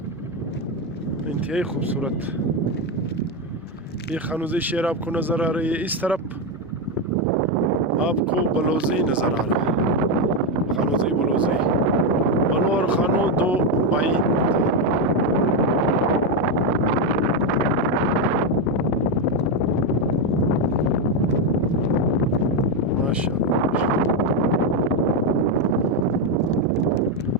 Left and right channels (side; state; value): both; normal; correlation 0.07